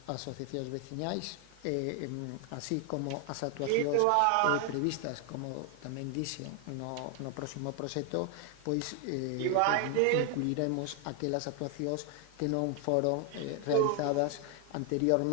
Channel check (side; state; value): both; different; correlation 0.01